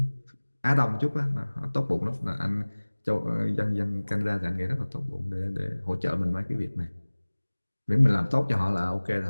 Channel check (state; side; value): inverted; both; correlation -1.00